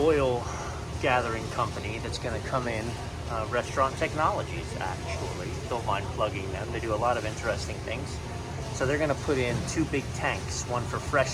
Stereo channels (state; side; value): identical; both; correlation 1.00